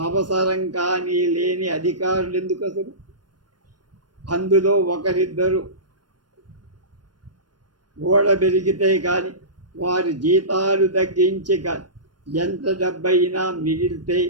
అవసరం కానీ లేని అధికారులు ఎందుకు అసలు? అందులో ఒకరిద్దరు ఓడబెరిగితే కానీ వారి జీతాలు తగ్గించి కానీ ఎంత డబ్బైనా మిగిలితే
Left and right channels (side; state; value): left; late; 0.70 ms